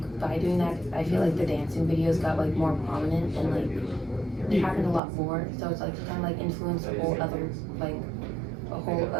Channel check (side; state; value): left; drops out; at 5.0 s